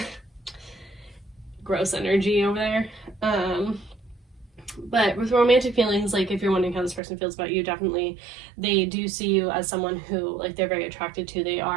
gross energy over there. But with romantic feelings, like if you're wondering how this person feels about you, definitely they do see you as someone who like they're very attracted to. They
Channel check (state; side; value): drops out; left; at 7.0 s